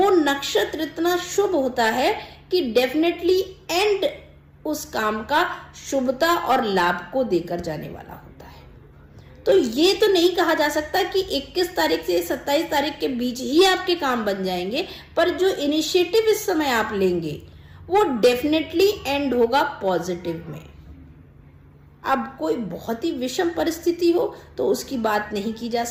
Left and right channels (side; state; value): both; identical; correlation 1.00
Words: नक्षत्र इतना शुभ होता है कि डेफिनेटली एंड उस काम का शुभता और लाभ को देकर जाने वाला होता है। तो ये तो नहीं कहा जा सकता कि 21 तारीख से 27 तारीख के बीच ही आपके काम बन जाएंगे, पर जो इनिशिएटिव इस समय आप लेंगे वो डेफिनेटली एंड होगा पॉजिटिव में। अब कोई बहुत ही विषम परिस्थिति हो तो उसकी बात नहीं की जा